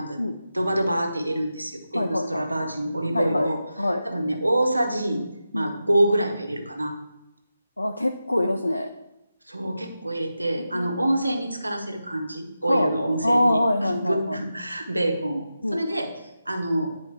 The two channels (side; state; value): both; inverted; correlation -0.90